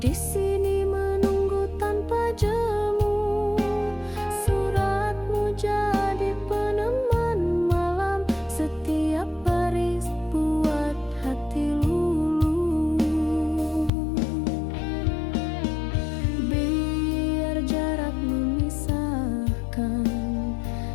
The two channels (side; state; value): right; drops out; at 13.9 s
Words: di sini menunggu tanpa jemu. Suratmu jadi peneman malam. Setiap baris buat hati luluh. Biar jarak memisahkan,